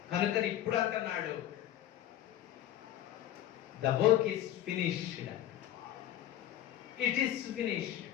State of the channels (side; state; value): right; quieter; 12.3 dB